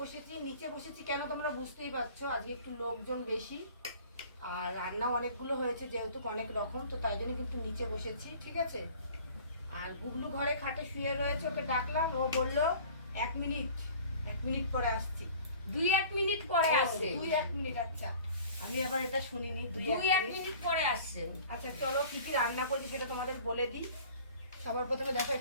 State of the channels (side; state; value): both; inverted; correlation -0.46